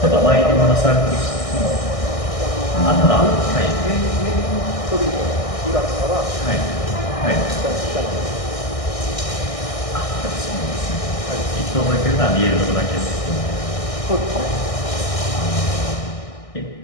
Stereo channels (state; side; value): late; right; 1.6 ms